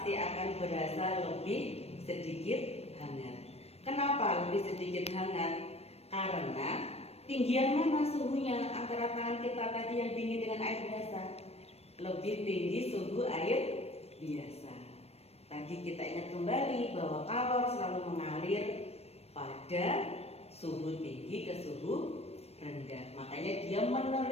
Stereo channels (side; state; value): right; late; 0.30 ms